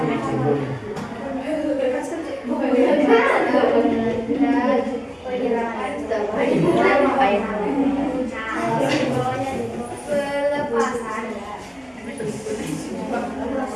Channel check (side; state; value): both; identical; correlation 1.00